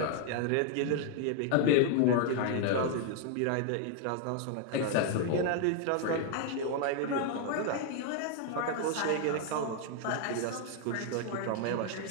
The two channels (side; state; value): both; different; correlation 0.00